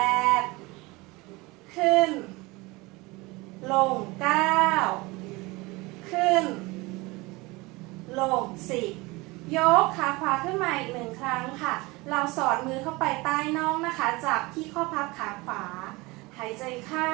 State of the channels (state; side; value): quieter; left; 23.4 dB